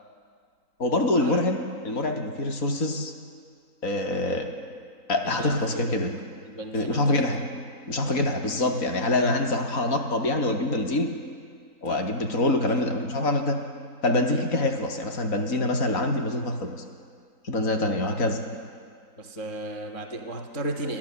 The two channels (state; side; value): late; right; 3.9 ms